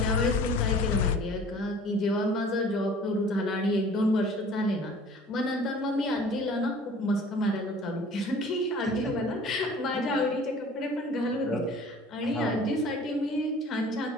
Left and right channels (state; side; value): normal; both; correlation 0.47